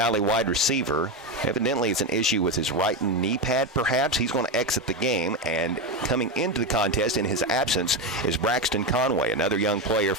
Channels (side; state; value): both; normal; correlation 0.13